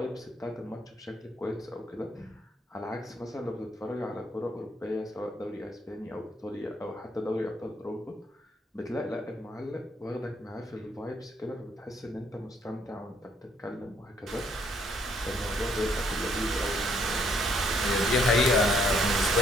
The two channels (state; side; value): normal; both; correlation 0.68